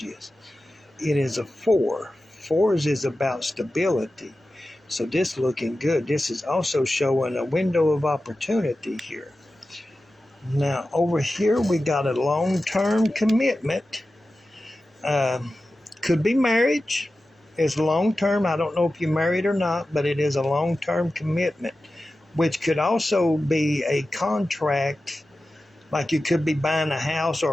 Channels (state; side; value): normal; both; correlation 0.94